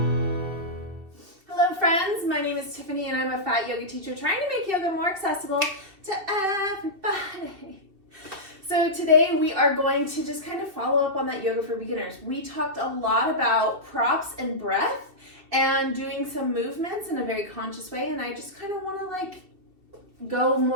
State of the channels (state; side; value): late; left; 2.7 ms